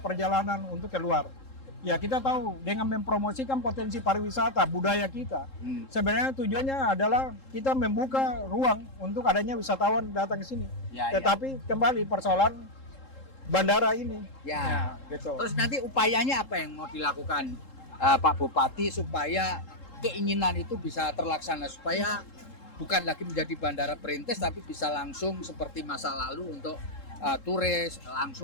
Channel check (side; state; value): right; late; 3.7 ms